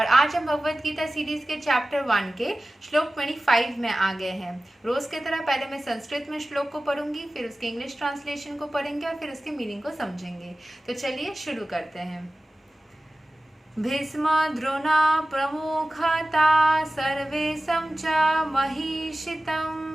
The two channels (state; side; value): normal; both; correlation 0.96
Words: आज हम भगवत गीता सीरीज के चैप्टर 1 के श्लोक 25 में आ गए हैं। रोज की तरह पहले मैं संस्कृत में श्लोक को पढ़ूंगी, फिर उसके इंग्लिश ट्रांसलेशन को पढ़ेंगे और फिर उसके मीनिंग को समझेंगे। तो चलिए शुरू करते हैं। भीष्म द्रोणा प्रमुखता सर्वेशं च